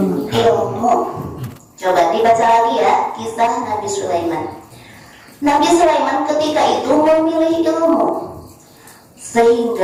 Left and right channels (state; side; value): identical; both; correlation 1.00